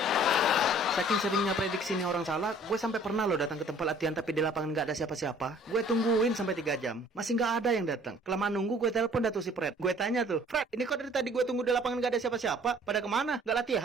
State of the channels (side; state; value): both; normal; correlation 0.54